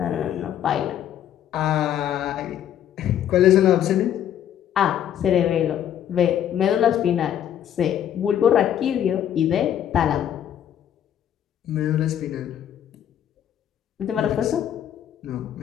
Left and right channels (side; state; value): right; quieter; 10.3 dB